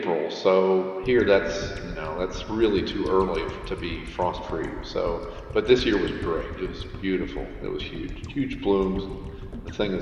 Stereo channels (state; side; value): identical; both; correlation 1.00